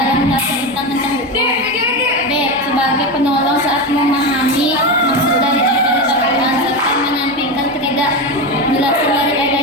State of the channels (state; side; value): normal; both; correlation 0.17